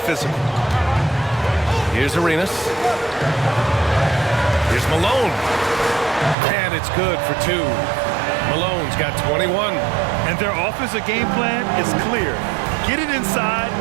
physical. Here's Arenas. Here's Malone. And it's good for 2. Malone's got 21. And their offensive game plan is clear. Get it inside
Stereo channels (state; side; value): drops out; left; at 6.4 s